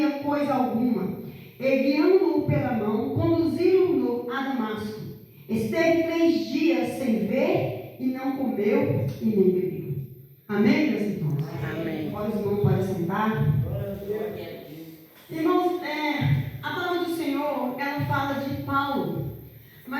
coisa alguma. E guiando-o pela mão, conduziram-no a Damasco. Esteve 3 dias sem ver, e não comeu e nem bebeu. Amém, meus irmãos? Amém. Agora os irmãos podem sentar. Irmãos, a palavra do Senhor, ela fala de Paulo.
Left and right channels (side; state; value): both; identical; correlation 1.00